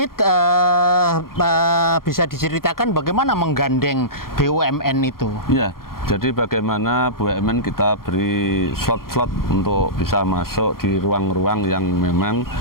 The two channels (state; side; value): late; right; 0.92 ms